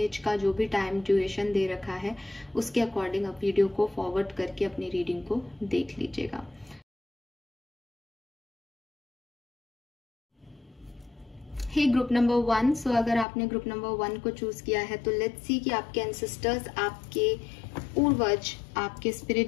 का जो भी टाइम ड्यूरेशन दे रखा है, उसके अकॉर्डिंग आप वीडियो को फॉरवर्ड करके अपनी रीडिंग को देख लीजिएगा। हे ग्रुप नंबर 1, सो अगर आपने ग्रुप नंबर 1 को चूज किया है तो लेट्स सी कि आपके एंसेस्टर्स, आपके पूर्वज, आपके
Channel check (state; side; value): drops out; right; at 13.2 s